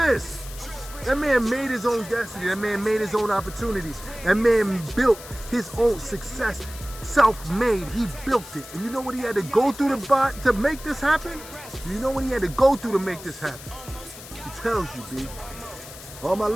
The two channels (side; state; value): left; noise; hiss, 15 dB below the sound